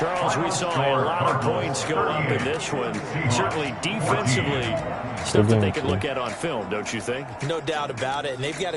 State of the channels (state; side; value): identical; both; correlation 1.00